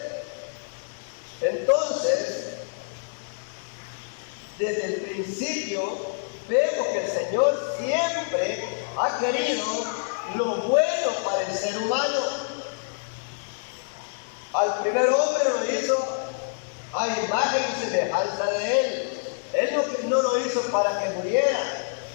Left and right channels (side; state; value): right; silent; digital silence